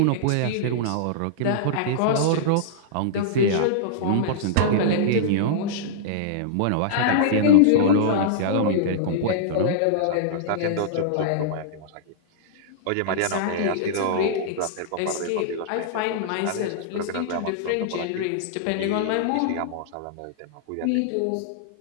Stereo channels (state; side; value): different; both; correlation -0.02